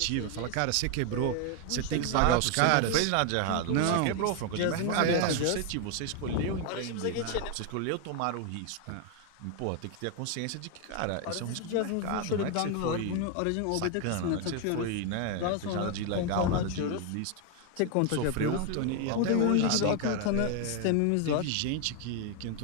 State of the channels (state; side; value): different; both; correlation 0.01